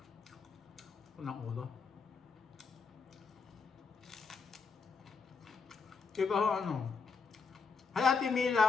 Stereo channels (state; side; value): quieter; right; 5.0 dB